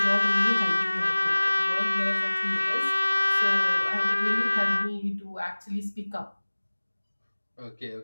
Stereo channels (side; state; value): both; inverted; correlation -1.00